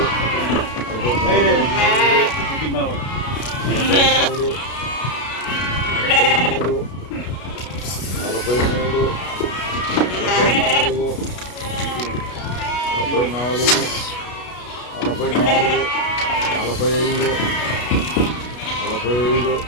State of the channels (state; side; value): late; right; 32 ms